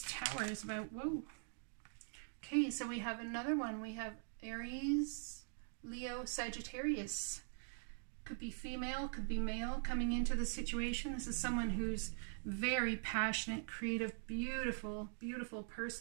Tower is about. Whoa. Okay, so we have another one. We have Aries, Leo, Sagittarius. Could be female, could be male coming into the situation. This is someone who's very passionate, creative, beautiful, beautiful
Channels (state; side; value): silent; left; digital silence